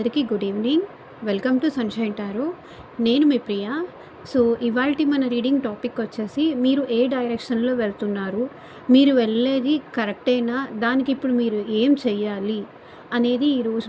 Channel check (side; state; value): both; identical; correlation 1.00